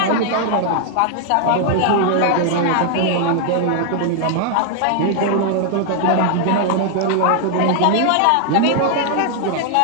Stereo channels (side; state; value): both; different; correlation 0.00